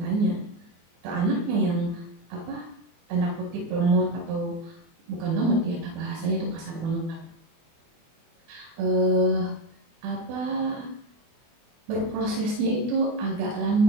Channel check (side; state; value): left; late; 24 ms